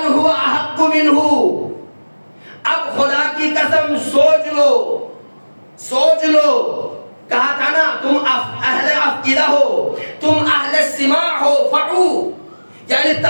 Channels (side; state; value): both; inverted; correlation -1.00